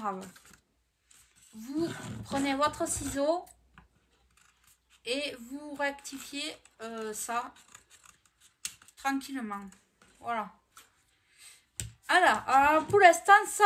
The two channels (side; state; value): both; identical; correlation 1.00